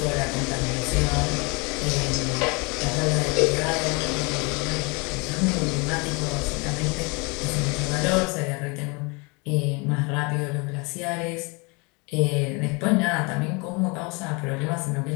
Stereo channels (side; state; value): right; quieter; 29.6 dB